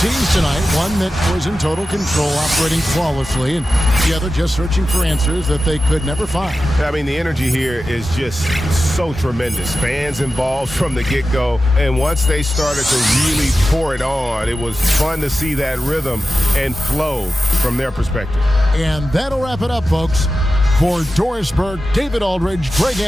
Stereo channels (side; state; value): both; normal; correlation 0.93